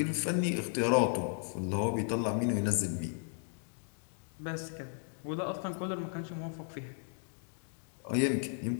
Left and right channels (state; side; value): silent; right; digital silence